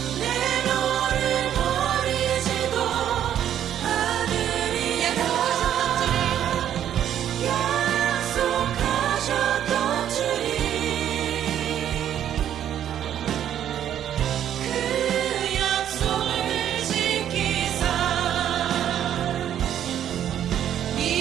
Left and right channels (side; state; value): left; quieter; 10.4 dB